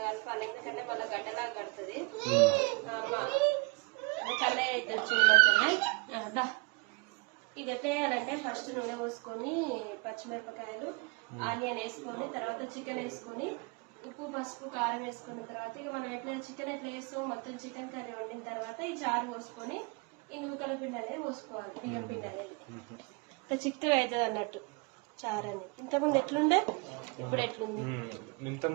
ఎందుకంటే మళ్ళీ గడ్డలాగా కడుతుంది. కళ్ళ అయితే వచ్చిందంటే ఇది ఎట్లా వేయాలంటే ఫస్ట్ నూనె పోసుకొని పచ్చిమిరపకాయలు ఆనియన్ వేసుకొని తర్వాత చికెన్ వేసుకొని ఉప్పు పసుపు కారం వేసుకున్న తర్వాత ఇక మనం ఎట్లా చికెన్ ఎట్లా వేస్తాం మొత్తం చికెన్ కర్రీ వండిన తర్వాత ఈ చారు పోసుకొని ఈ నూకల పిండి అనేది పోసుకోవాలి, బియ్యం పిండి అనేది ఇట్లా చిక్కగా అవుతుంది అన్నట్టు చారు అని. ఇంతకుముందు ఎట్లుండే ఇప్పుడు ఎట్లుంది? ఇంత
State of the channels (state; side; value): quieter; left; 29.1 dB